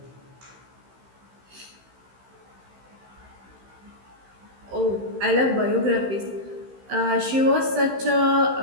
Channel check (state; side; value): late; left; 15 ms